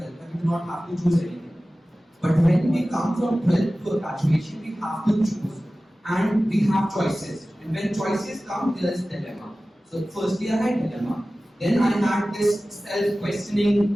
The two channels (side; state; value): both; normal; correlation 0.96